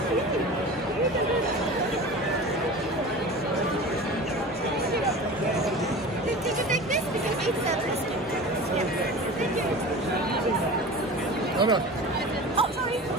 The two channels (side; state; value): both; normal; correlation 0.34